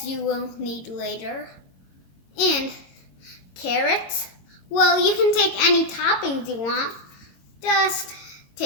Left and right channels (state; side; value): late; right; 22 ms